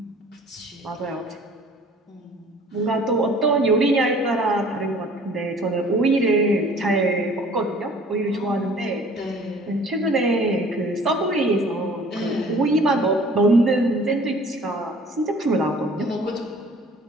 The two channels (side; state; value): both; normal; correlation 0.51